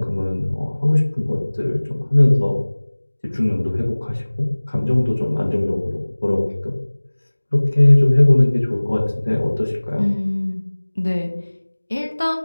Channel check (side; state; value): both; inverted; correlation -1.00